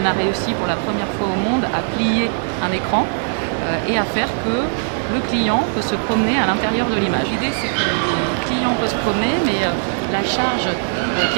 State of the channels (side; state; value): left; silent; digital silence